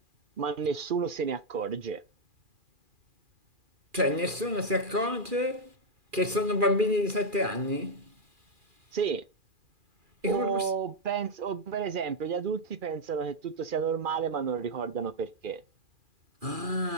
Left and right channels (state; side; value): late; left; 2.4 ms